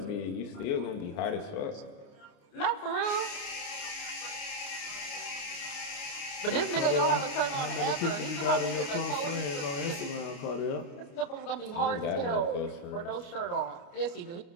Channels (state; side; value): late; right; 29 ms